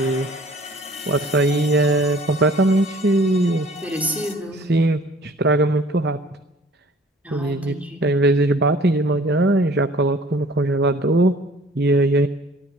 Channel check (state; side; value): normal; both; correlation 0.52